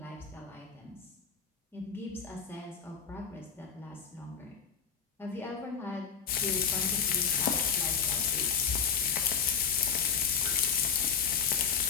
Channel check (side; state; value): right; quieter; 7.0 dB